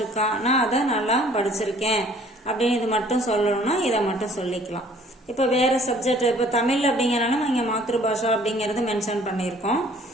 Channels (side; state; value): both; normal; correlation 0.56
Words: நான் அதை நல்லா படிச்சிருக்கேன் அப்படின்னு இது மட்டும் சொல்லணும்னா இதை மட்டும் சொல்லிக்கலாம். இப்போ வேற சப்ஜெக்ட், இப்போ தமிழ் அப்படிங்கிறனால நம்ம இங்கே மாத்ரு பாஷா அப்படிங்கிறது மென்ஷன் பண்ணியிருக்கோம்.